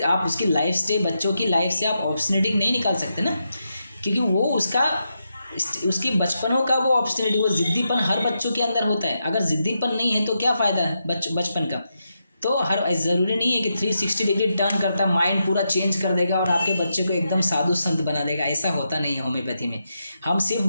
लाइफ से, बच्चों की लाइफ से आप ऑब्स्टिनिटी नहीं निकाल सकते ना, क्योंकि वो उसकी बचपनों का वो ऑब्स्टिनिटी, वो ज़िद्दीपन हर बच्चों के अंदर होता है। अगर ज़िद्दीपन नहीं है तो क्या फ़ायदा है बचपन का। तो ज़रूरी नहीं है कि 360 डिग्री टर्न करता माइंड पूरा चेंज कर देगा और आपके बच्चे को एकदम साधु संत बना देगा, ऐसा होता नहीं है होम्योपैथी में। हम सिर्फ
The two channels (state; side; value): inverted; both; correlation -0.85